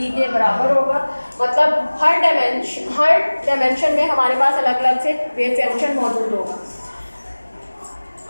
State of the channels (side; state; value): both; inverted; correlation -1.00